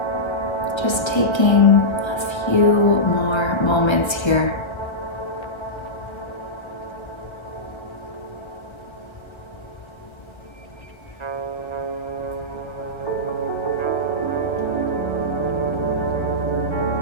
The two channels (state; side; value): late; right; 1.5 ms